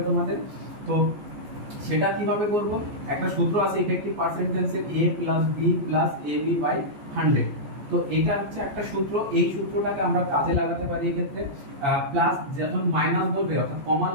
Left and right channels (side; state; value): left; late; 14 ms